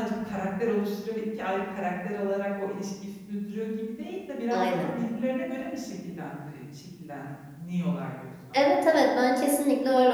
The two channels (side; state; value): both; identical; correlation 1.00